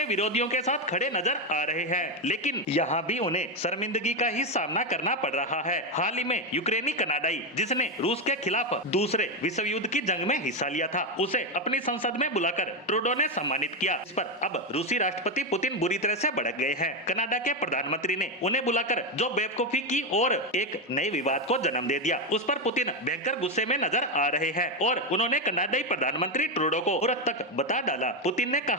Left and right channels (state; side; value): normal; both; correlation 0.09